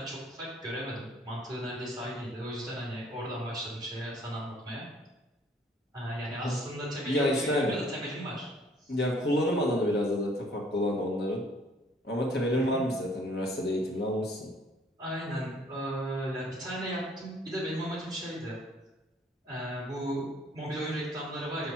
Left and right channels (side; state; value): both; normal; correlation 0.59